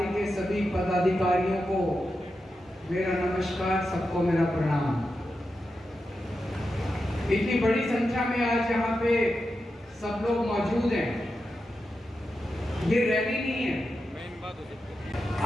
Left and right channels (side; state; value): both; normal; correlation 0.89